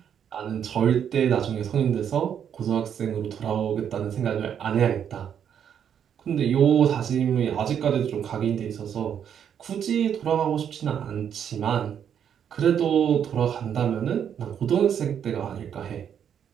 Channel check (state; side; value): quieter; left; 8.6 dB